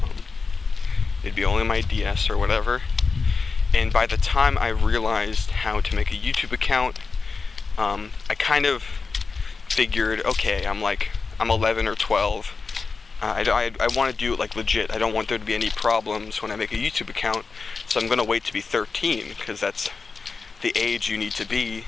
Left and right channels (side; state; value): right; quieter; 4.6 dB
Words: it'd be only my DS or whatever, and by the time I realized how to make a YouTube account, I kind of figured, okay, I'm 11 or 12, I want to do it like legit. I don't want there to be any problems when I make a YouTube account, so I'm going to wait to be 13, because that's the age you need to be,